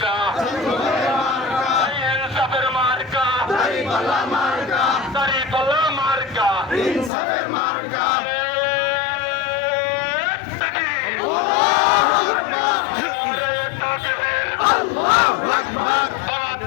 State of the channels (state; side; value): drops out; right; at 7.1 s